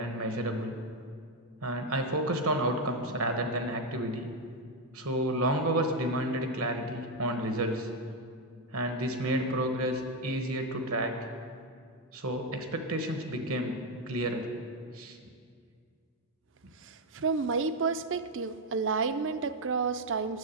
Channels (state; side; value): normal; both; correlation 0.06